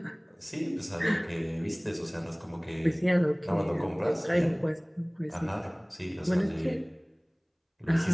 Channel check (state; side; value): identical; both; correlation 1.00